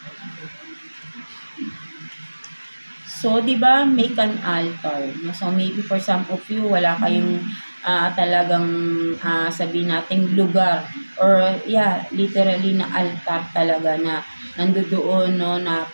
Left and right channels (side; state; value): both; inverted; correlation -1.00